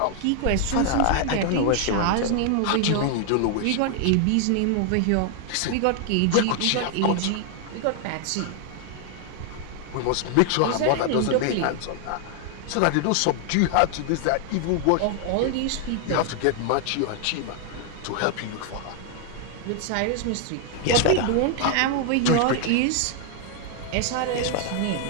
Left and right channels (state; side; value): different; both; correlation 0.00